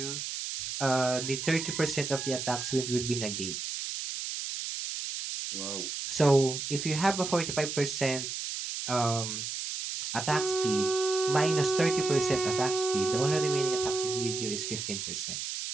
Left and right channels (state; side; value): noise; right; hiss, 5 dB below the sound